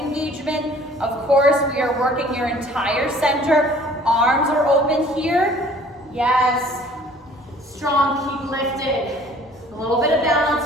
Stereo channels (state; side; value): normal; both; correlation 0.53